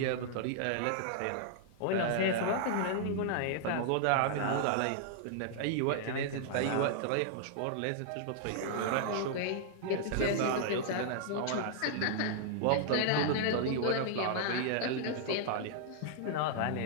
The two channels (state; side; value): different; both; correlation -0.01